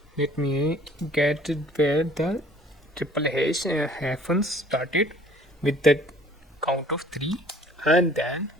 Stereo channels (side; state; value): both; normal; correlation 0.54